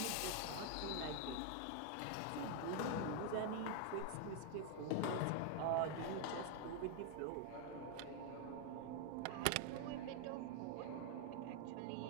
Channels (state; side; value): different; both; correlation 0.00